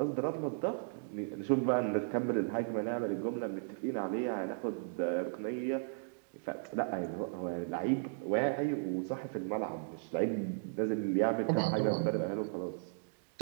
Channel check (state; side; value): silent; left; digital silence